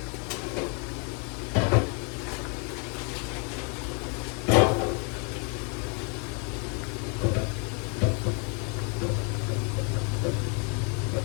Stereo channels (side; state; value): right; quieter; 36.8 dB